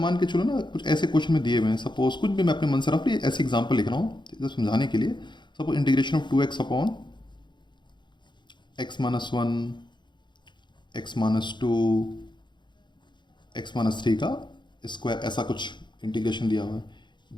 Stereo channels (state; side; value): late; right; 0.22 ms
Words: के चलो ना, कुछ ऐसे क्वेश्चन में दिए हुए हैं, सपोज कुछ भी मैं अपने मन से रफली ऐसे एग्जाम्पल लिख रहा हूँ तो समझाने के लिए। Suppose integration of 2x upon x-1 x-2 x-3 का स्क्वायर, ऐसा कुछ इंटीग्रेशन दिया हुआ है।